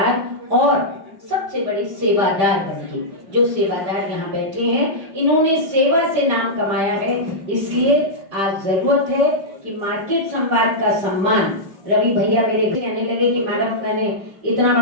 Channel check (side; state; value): left; late; 5.0 ms